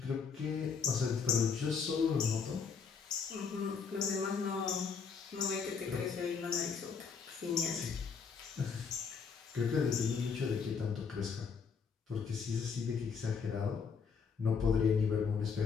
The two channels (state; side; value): quieter; right; 5.9 dB